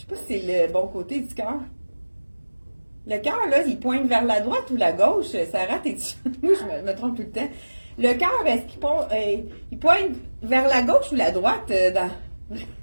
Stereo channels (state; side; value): inverted; both; correlation -1.00